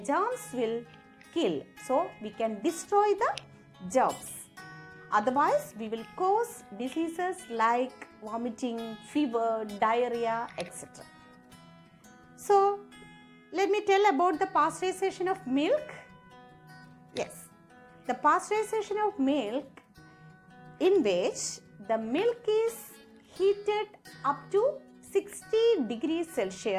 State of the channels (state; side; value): identical; both; correlation 1.00